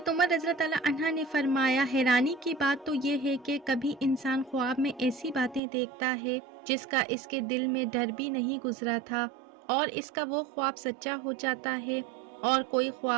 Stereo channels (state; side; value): drops out; left; at 5.6 s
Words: عمر رضی اللہ تعالیٰ عنہ نے فرمایا حیرانی کی بات تو یہ ہے کہ کبھی انسان خواب میں ایسی باتیں دیکھتا ہے جس کا اس کے دل میں ڈر بھی نہیں گزرا تھا، اور اس کا وہ خواب سچا ہو جاتا ہے، اور کوئی